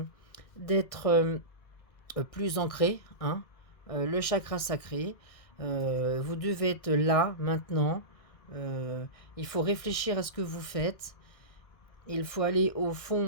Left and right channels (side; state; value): right; late; 2.0 ms